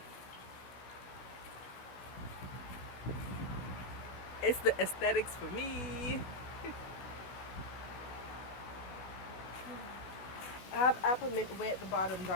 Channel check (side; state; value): right; late; 16 ms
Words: it's the aesthetics for me. I have apple mint way at the bottom